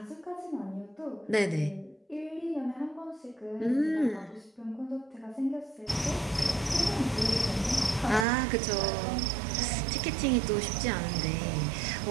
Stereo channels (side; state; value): left; drops out; at 8.2 s